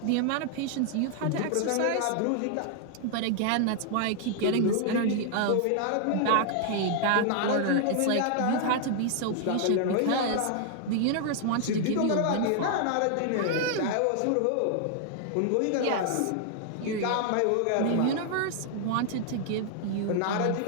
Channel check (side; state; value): both; different; correlation 0.00